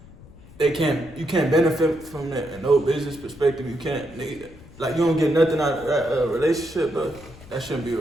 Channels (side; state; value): left; noise; rumble, 20 dB below the sound